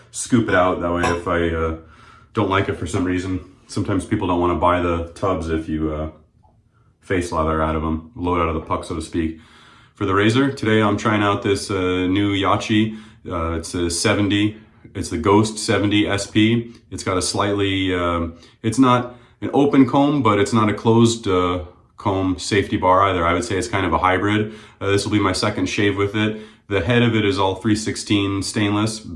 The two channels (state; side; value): identical; both; correlation 1.00